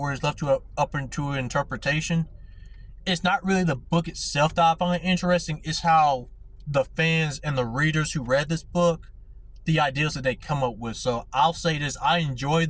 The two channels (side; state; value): both; identical; correlation 1.00